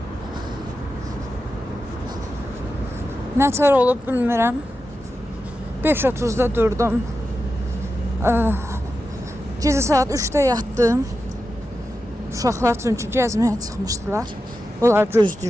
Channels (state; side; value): normal; both; correlation 0.90